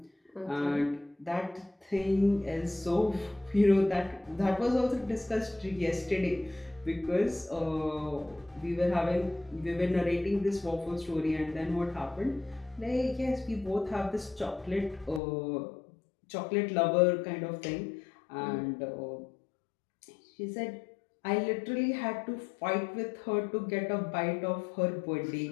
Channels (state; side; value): drops out; right; at 15.2 s